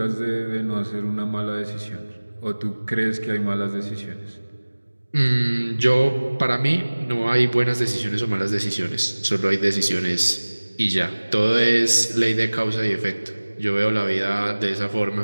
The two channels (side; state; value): both; inverted; correlation -1.00